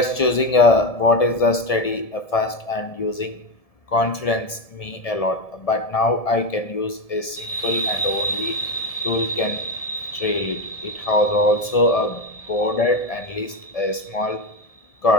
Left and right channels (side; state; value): right; late; 1.7 ms